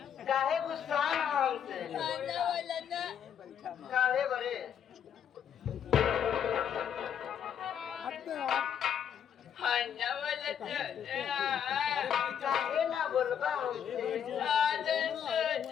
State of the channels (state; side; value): quieter; right; 8.6 dB